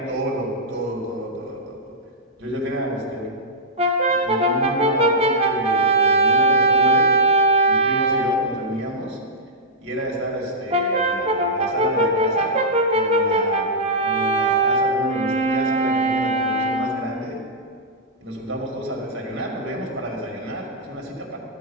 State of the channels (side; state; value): both; normal; correlation -0.11